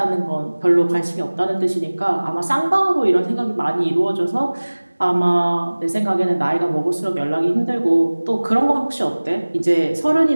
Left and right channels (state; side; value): inverted; both; correlation -1.00